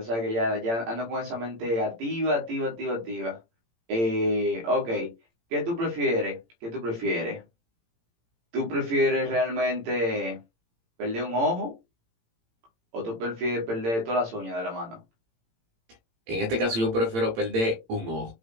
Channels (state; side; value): late; left; 18 ms